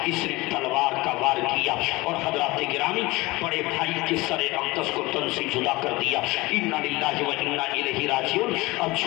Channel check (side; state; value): right; quieter; 21.6 dB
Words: اس نے تلوار کا وار کیا اور حضرات گرامی بڑے بھائی کے سر اقدس کو تن سے جدا کر دیا. انا للہ و انا الیہ راجعون. اب